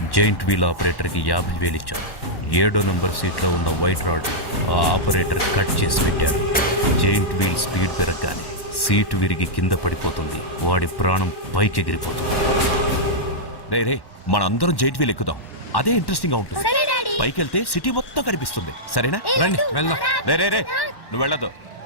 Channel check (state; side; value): late; right; 1.1 ms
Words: జైంట్ వీల్ ఆపరేటర్కి 50,000 ఇచ్చారు. 7వ నంబర్ సీట్లో ఉన్న వైట్ రాడ్ ఆ ఆపరేటర్ కట్ చేసి పెట్టాడు. జైంట్ వీల్ స్పీడ్ పెరగగానే సీటు విరిగి కింద పడిపోతుంది. వాడి ప్రాణం పైకి ఎగిరిపోతుంది. రే మనందరం జైంట్ వీల్ ఎక్కుదాం, అదే ఇంట్రెస్టింగ్ గా ఉంటుంది. సరే డాడీ. పైకి వెళ్తే సిటీ మొత్తం కనిపిస్తుంది. సరేనా? రండి వెళ్దాం. రే నువ్వు వెళ్ళదు.